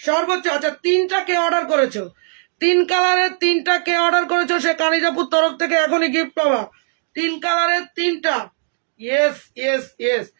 আচ্ছা 3টা কে অর্ডার করেছো? 3 কালারের 3টা কে অর্ডার করেছো সে কানিজাপুর তরফ থেকে এখনই গিফট পাবা। 3 কালারের 3টা, ইয়েস ইয়েস ইয়েস।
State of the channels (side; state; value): left; silent; digital silence